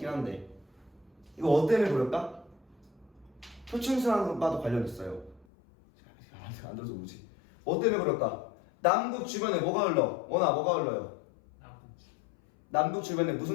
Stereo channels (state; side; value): drops out; right; at 5.5 s